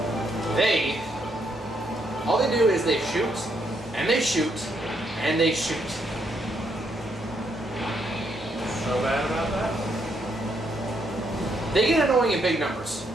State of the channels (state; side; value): normal; both; correlation 0.75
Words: All they do is they shoot, and they shoot, and they shoot. So bad about that? They get annoying in big numbers.